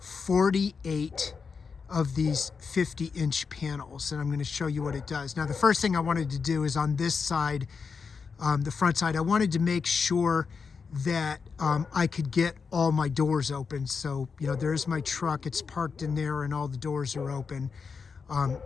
48 of these 50-inch panels, and I'm going to show you what it does. Now, the first thing I wanted to do is on this side, the front side, I wanted to make sure that I could get all my doors open. So, you know, there's my truck, it's parked in there, and all the doors are open.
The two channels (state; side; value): quieter; right; 5.4 dB